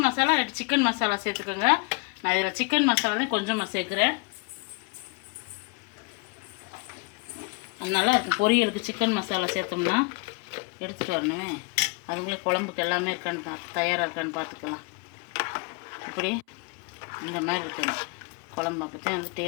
மசாலா இல்லாட்டி சிக்கன் மசாலா சேர்த்துக்கோங்க. நான் இதில் சிக்கன் மசாலா தான் கொஞ்சமாக சேர்க்குறேன். நல்லா இருக்கும். பொரியலுக்கு சிக்கன் மசாலா சேர்த்தோம்னா எடுத்துகிட்டு வரணுமே, அதுக்குள்ளே குழம்புக்கு எல்லாமே இருக்கான்னு தயாராக இருக்கான்னு பார்த்துக்கலாம். இப்படி இந்த மாதிரி இருக்கணும் குழம்பு, அப்போ தான் வந்து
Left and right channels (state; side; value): quieter; right; 30.0 dB